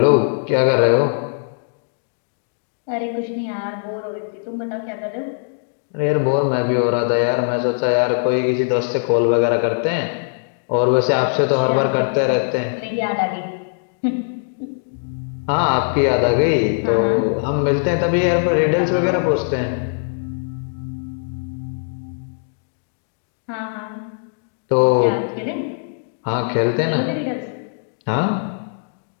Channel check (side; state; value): right; silent; digital silence